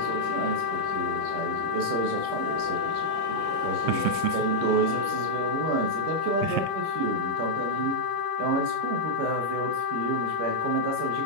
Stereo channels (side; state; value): left; late; 26 ms